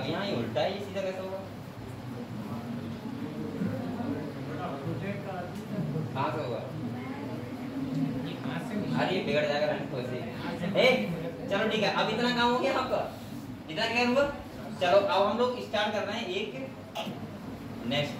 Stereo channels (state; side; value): identical; both; correlation 1.00